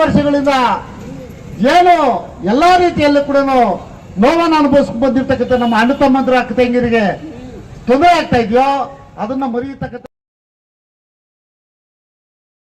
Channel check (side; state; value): both; identical; correlation 1.00